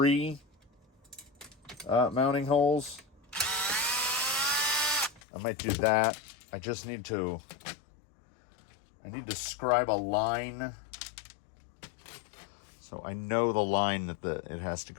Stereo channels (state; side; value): drops out; right; at 5.2 s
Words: mounting holes, I might do that. I need to scribe a line so I know the line that it has to